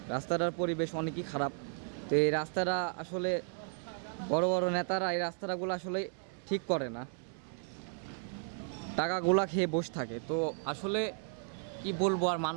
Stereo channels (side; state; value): left; silent; 55 dB below the other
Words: রাস্তাটার পরিবেশ অনেকই খারাপ। তো এই রাস্তাটা আসলে বড় বড় নেতারা এই রাস্তাগুলো আসলে ঠিক করে না, টাকাগুলা খেয়ে বসে থাকে। তো আসলে কি বলবো, আর